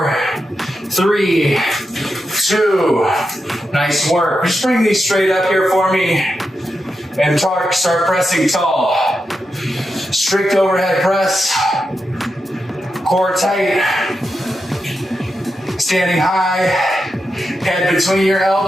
3, 2. Nice work. Just bring these straight up here for me and start pressing tall. Strict overhead press. Core tight. Standing high. Head between your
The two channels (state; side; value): normal; both; correlation 0.88